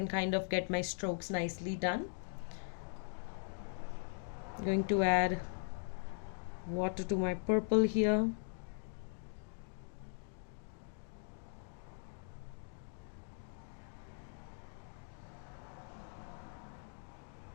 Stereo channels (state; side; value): silent; right; digital silence